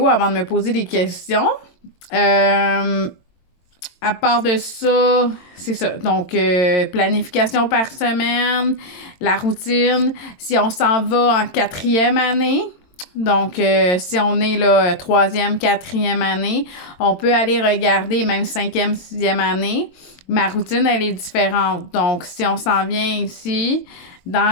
avant de me poser des questions. À part de ça, c'est ça. Donc, planification par semaine, la routine. Si on s'en va en 4e année, donc si on est là 3e, 4e année, on peut aller regarder même 5e, 6e année. Ma routine, elle est différente. Donc, si on s'en vient ici,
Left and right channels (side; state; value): right; late; 22 ms